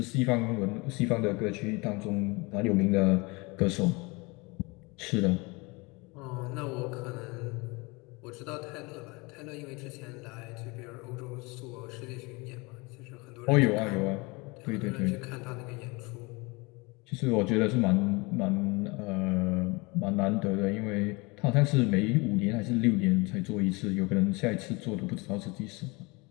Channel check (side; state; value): right; quieter; 26.3 dB